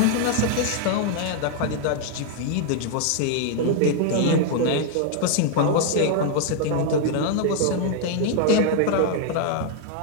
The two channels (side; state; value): both; different; correlation 0.00